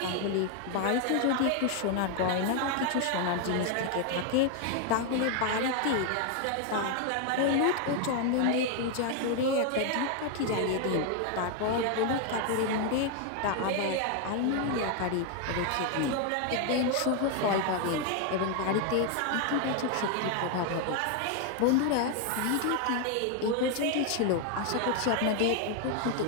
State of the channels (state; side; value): different; both; correlation 0.00